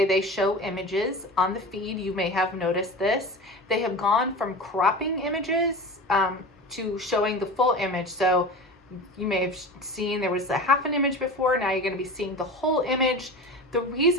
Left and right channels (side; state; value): both; normal; correlation 0.32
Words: they show images on the feed. You may have noticed this. They have gone from cropping images to showing the full image. So you may have seen there was a half an image before. Now you're going to be seeing the whole image. The